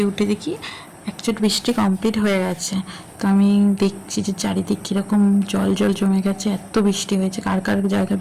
উঠে দেখি একচুট বৃষ্টি কমপ্লিট হয়ে গেছে। তো আমি দেখছি যে চারিদিক কীরকম জল জল জমে গেছে, এত বৃষ্টি হয়েছে। কার কার জায়গায়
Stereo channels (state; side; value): identical; both; correlation 1.00